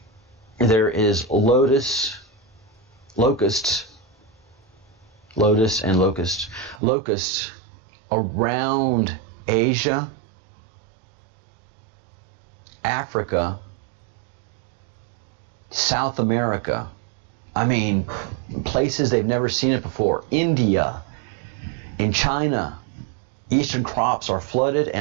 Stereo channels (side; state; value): left; drops out; at 6.8 s